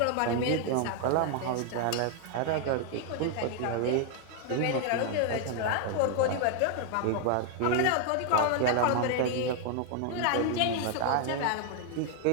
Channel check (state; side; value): different; both; correlation 0.00